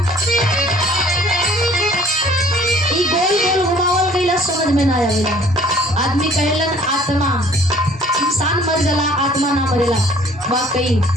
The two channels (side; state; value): both; normal; correlation 0.54